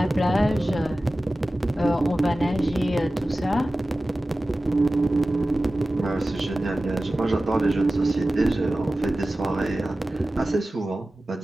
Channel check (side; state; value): both; normal; correlation 0.96